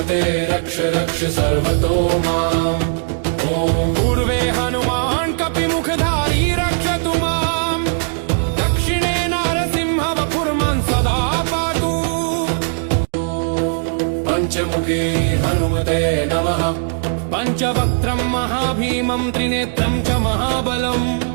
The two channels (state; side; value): silent; left; digital silence